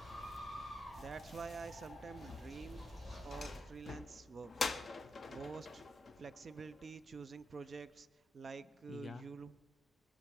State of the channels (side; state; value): both; normal; correlation 0.85